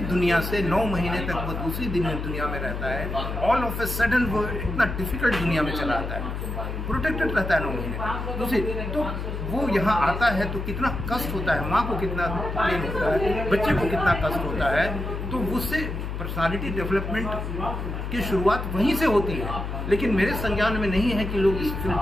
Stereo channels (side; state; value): left; noise; hum, 5 dB below the sound